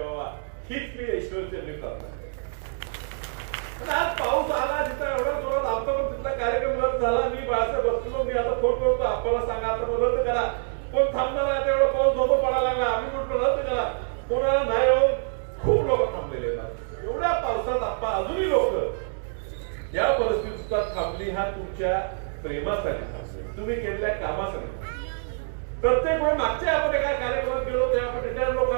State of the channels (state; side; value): silent; left; digital silence